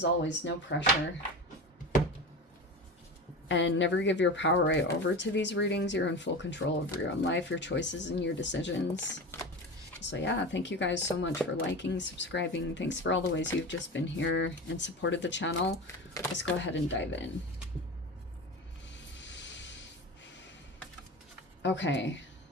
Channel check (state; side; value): normal; both; correlation 0.29